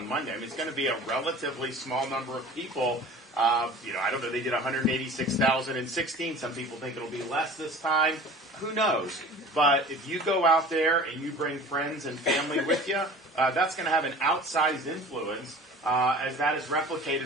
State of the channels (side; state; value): both; normal; correlation 0.42